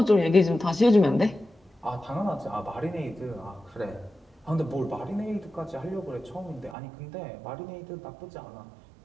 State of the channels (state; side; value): drops out; left; at 6.8 s